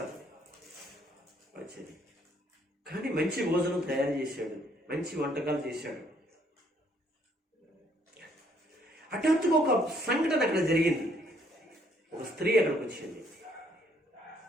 వచ్చేది కానీ మంచి భోజనం తయారు చేశాడు, మంచి వంటకాలు చేశాడు. హఠాత్తుగా ఒక సంఘటన అక్కడ జరిగింది. ఒక స్త్రీ అక్కడికి వచ్చింది.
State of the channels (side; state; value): both; normal; correlation 0.67